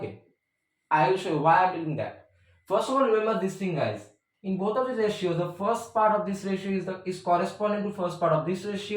I will show you why I am doing that. First of all, remember this thing, guys. In both of these ratios, the first part of this ratio is corresponding to first part of this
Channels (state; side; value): identical; both; correlation 1.00